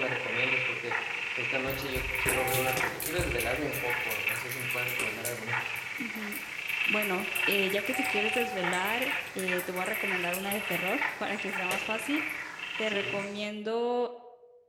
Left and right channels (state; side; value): identical; both; correlation 1.00